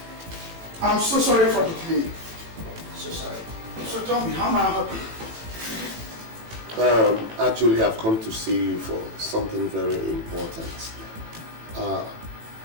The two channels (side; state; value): left; late; 18 ms